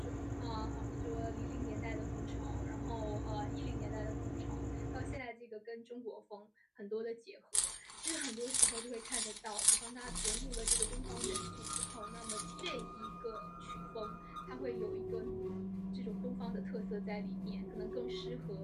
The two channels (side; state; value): both; identical; correlation 1.00